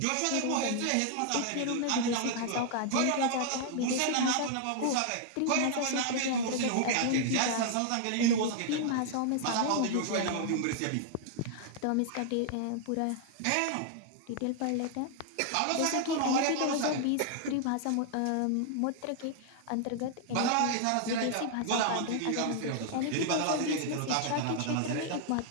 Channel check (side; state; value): both; different; correlation 0.00